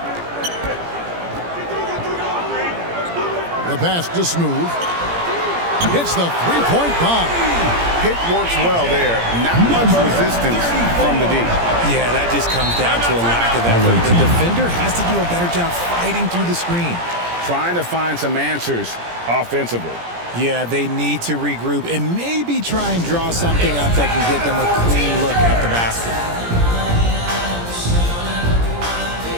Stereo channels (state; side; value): late; left; 17 ms